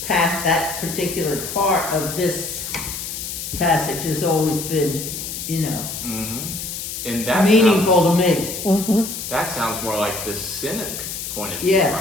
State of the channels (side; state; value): left; noise; hiss, 6 dB below the sound